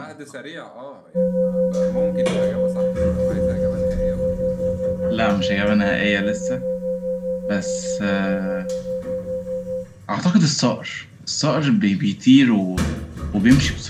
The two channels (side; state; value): both; identical; correlation 1.00